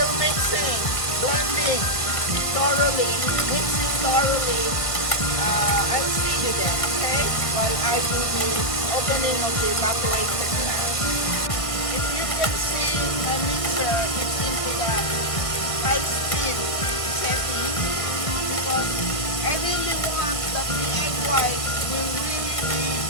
mixing, blending thoroughly, mixing thoroughly. I'll see you then, okay? While I do the opening of the evaporation fan. If you can see my mixer, it's into the high speed setting because I really want that the egg white will really be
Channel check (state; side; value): late; right; 1.6 ms